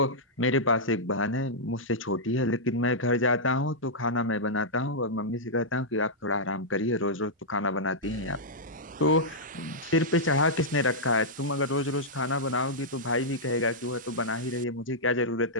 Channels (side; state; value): both; normal; correlation -0.09